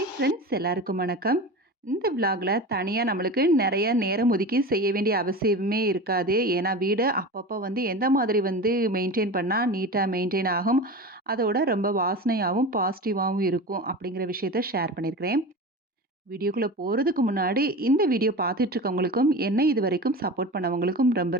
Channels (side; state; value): both; normal; correlation 0.30